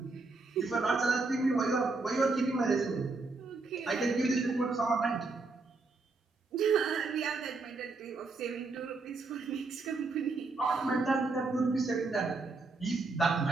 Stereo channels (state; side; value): quieter; left; 3.7 dB